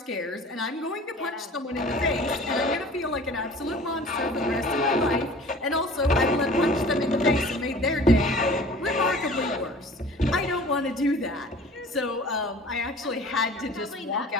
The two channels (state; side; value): normal; both; correlation 0.45